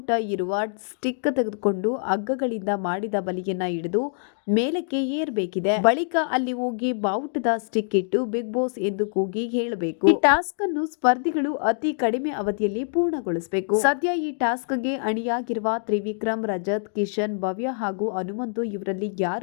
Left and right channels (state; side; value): silent; right; digital silence